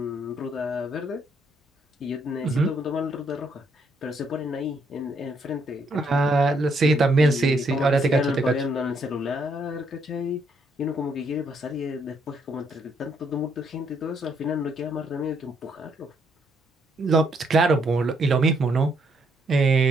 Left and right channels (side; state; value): both; normal; correlation 0.72